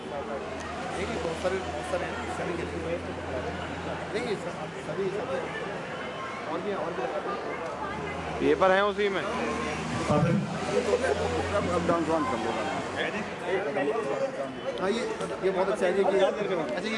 पेपर है उसी में। हाँ, ये बहुत अच्छा है कि अच्छा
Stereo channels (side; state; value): both; identical; correlation 1.00